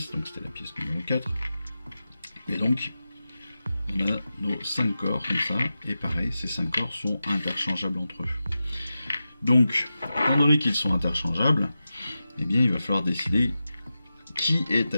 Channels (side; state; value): both; inverted; correlation -0.92